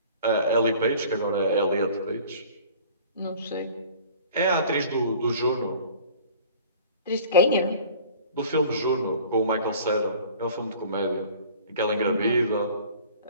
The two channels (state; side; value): inverted; both; correlation -0.47